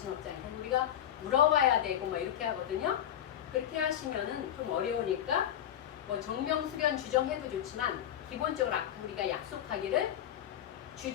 없잖아요. 우리가 물어봐야 되고 뭐 이렇게 하거든요. 그렇게 하시면은 좀 어려우니까 뭐 정명 수련 주정해도 좋지만 기본적으로 아까 우리가 약속하기를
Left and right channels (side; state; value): right; quieter; 10.7 dB